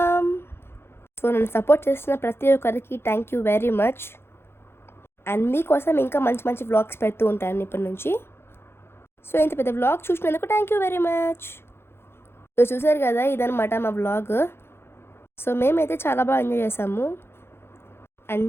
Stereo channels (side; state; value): right; late; 0.12 ms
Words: సో నన్ను సపోర్ట్ చేస్తున్న ప్రతి ఒక్కరికి thank you very much. And మీకోసం ఇంకా మంచి మంచి వ్లాగ్స్ పెడుతూ ఉంటాను ఇప్పటి నుంచి. సో ఇంత పెద్ద వ్లాగ్ చూసినందుకు thank you very much. So చూసారు కదా ఇదనమాట మా వ్లాగ్. సో మేమైతే చాలా బాగా ఎంజాయ్ చేసాము. And